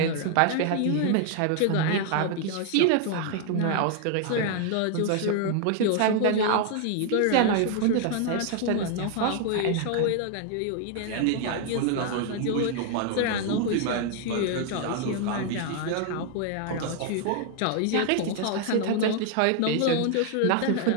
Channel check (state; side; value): different; both; correlation 0.00